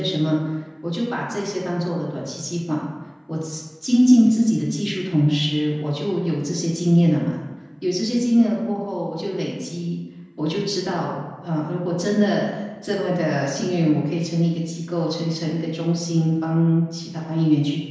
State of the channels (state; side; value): identical; both; correlation 1.00